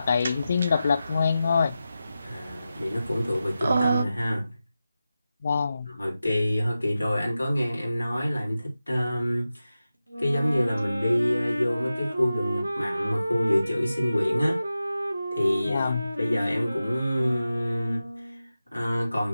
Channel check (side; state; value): both; inverted; correlation -0.93